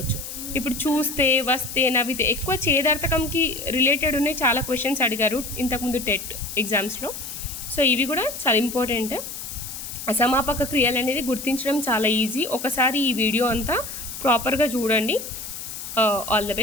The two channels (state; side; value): noise; left; hiss, 9 dB below the sound